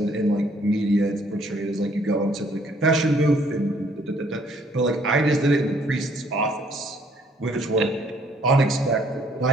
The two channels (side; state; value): both; normal; correlation 0.64